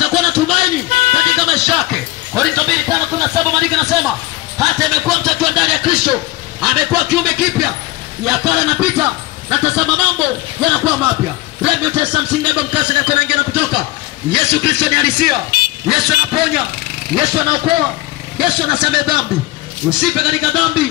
na tumaini katika maisha yake. Korintho 2:5-7 maandiko yanasema hata amekuwa mtakiwa ndani ya Kristo, amekuwa kiumbe kipya, ya kale yanapita na tazama mambo yanakuwa mapya. Remi utesa msingaba mkasa na kunaingia na kutoka. Yesu Kristo ni halisia. Yesu anaponya, Yesu anaokoa, Yesu anasamehe dhambi. Usipe katika dhambi.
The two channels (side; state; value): right; quieter; 18.3 dB